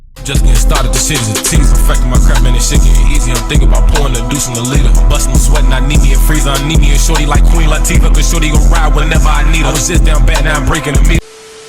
Just getting started, this shit is a tease. I'm affecting my crap, man, this shit getting easy. I'm thinking about pouring the deuce in the leader. I'm busting, I'm sweating, I need me a freezer. I need me a shorty like Queen Latifah, cause shorty gon' ride whenever I need her. I was just down bad, now I'm breaking the meat.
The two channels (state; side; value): identical; both; correlation 1.00